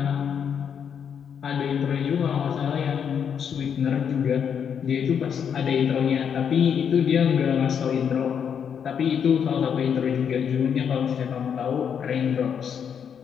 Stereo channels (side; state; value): right; quieter; 7.7 dB